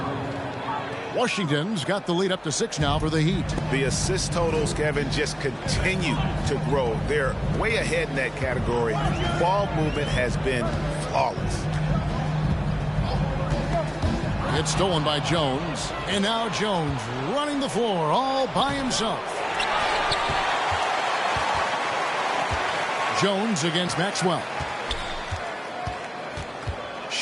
Washington's got the lead up to 6 now for the Heat. The assist totals, Kevin, just continue to grow. They're way ahead in that category. Ball movement has been flawless. It's stolen by Jones. And now Jones running the floor all by himself. Jones against Maxwell.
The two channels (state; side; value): identical; both; correlation 1.00